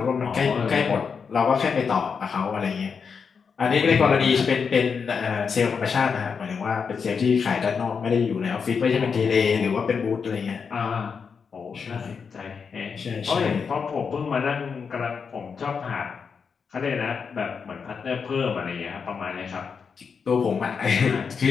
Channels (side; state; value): right; quieter; 5.9 dB